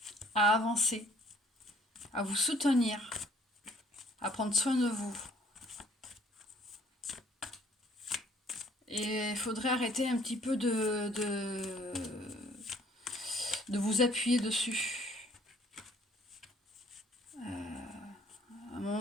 à avancer, à vous soutenir, à prendre soin de vous. Et il faudrait arrêter un petit peu de vous appuyer dessus. À un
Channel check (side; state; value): both; normal; correlation 0.60